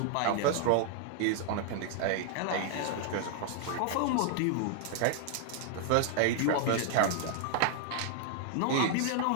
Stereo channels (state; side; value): different; both; correlation 0.00